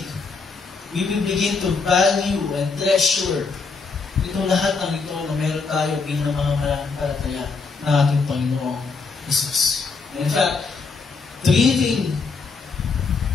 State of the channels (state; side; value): quieter; right; 4.6 dB